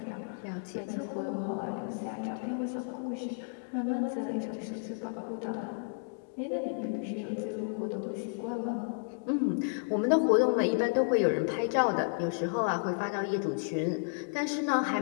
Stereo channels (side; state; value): right; silent; digital silence